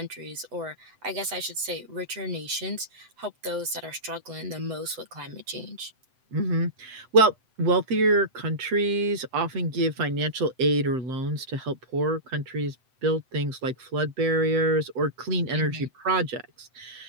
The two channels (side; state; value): left; late; 7.8 ms